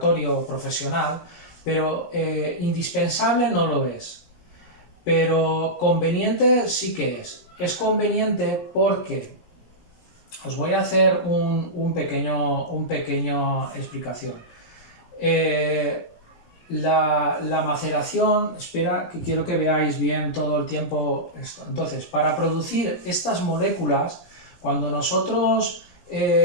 profesional, pero indispensable no lo es. Pero conveniente sí que es. Es conveniente porque os voy a hacer un pequeño explicación. La maceración, espera que quiero que veáis bien todo el tiempo esto. Entonces, para producir estas moléculas, cuando nosotros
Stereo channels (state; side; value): late; right; 17 ms